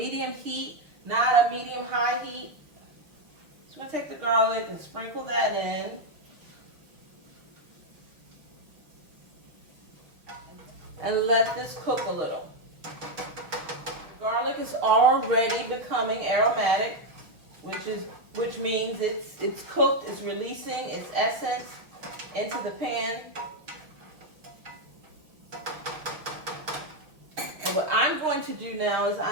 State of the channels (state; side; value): late; left; 6.1 ms